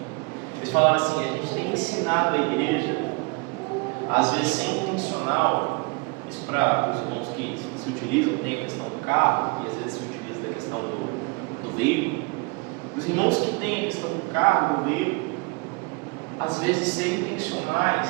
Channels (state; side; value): quieter; left; 30.3 dB